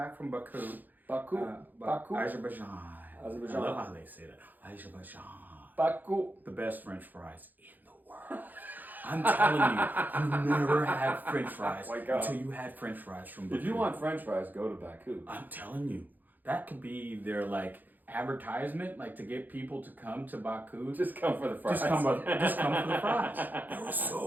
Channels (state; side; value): late; left; 0.085 ms